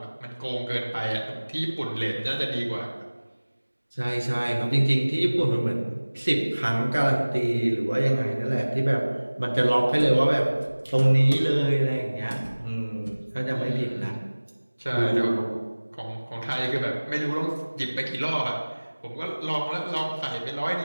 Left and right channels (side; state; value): both; inverted; correlation -1.00